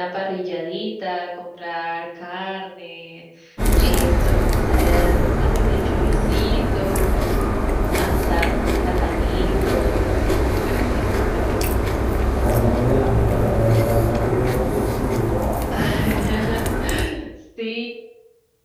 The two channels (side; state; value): both; identical; correlation 1.00